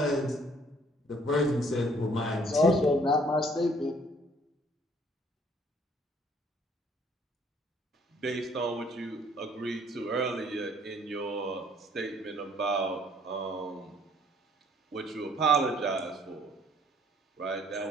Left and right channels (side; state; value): both; normal; correlation 0.61